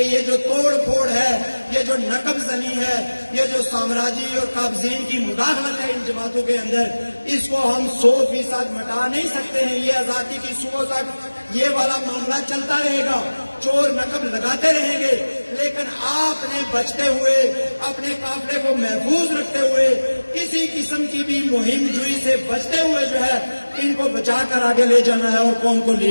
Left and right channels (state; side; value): inverted; both; correlation -1.00